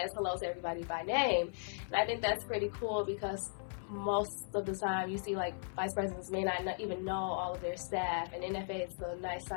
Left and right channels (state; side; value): silent; right; 53 dB below the other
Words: hello to everybody by name. And I think that's pretty cool because most of the time you see like vice presidents may not even know all of their staff, and NFA is a nice